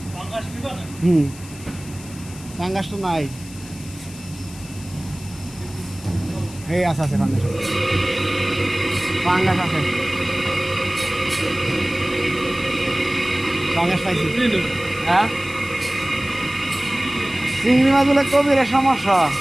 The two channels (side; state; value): left; noise; hiss, 18 dB below the sound